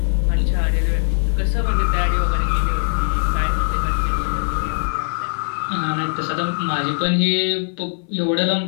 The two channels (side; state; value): right; silent; 61 dB below the other